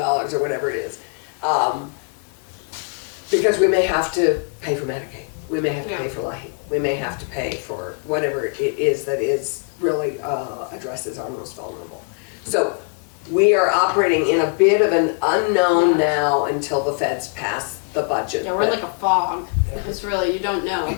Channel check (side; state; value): right; quieter; 38.5 dB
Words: whatever it is, because we may have to pay for Medicaid, we may have to pay for LIHEAP, we may have to pay for whatever it is that is really addresses our most vulnerable. So we are operating in a bit of an unknown now until the feds pass the budget. Yeah, we're like a fog. It's really, you don't know.